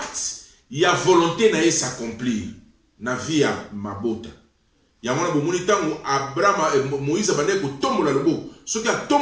il y a volonté na s'accomplir. Na vie à mabota. Yamona bomoni tango Abraham Moïse bande ko tombola loboko. Soki a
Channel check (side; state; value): both; identical; correlation 1.00